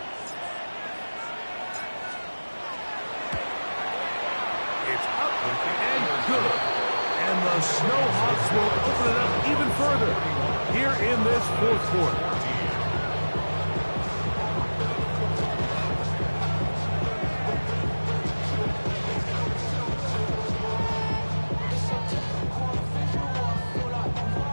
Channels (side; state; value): both; inverted; correlation -1.00